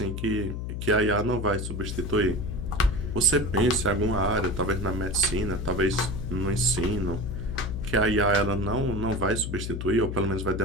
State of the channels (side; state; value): left; noise; hum, 5 dB below the sound